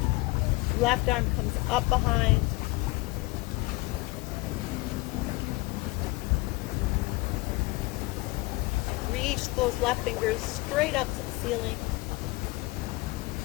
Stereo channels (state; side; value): quieter; right; 23.3 dB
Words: Left arm comes up behind. Reach those left fingers straight up to the ceiling.